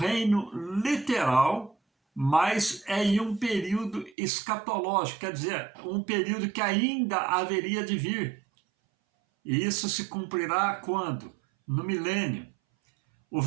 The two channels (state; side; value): drops out; left; at 4.2 s